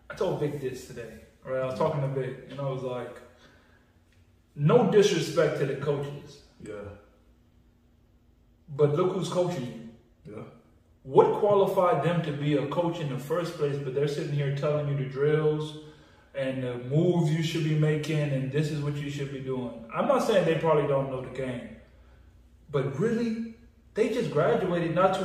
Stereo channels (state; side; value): identical; both; correlation 1.00